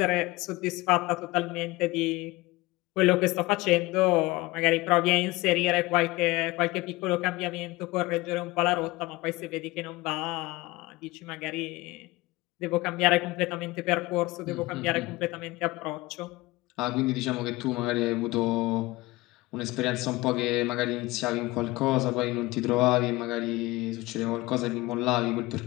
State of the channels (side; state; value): right; quieter; 20.9 dB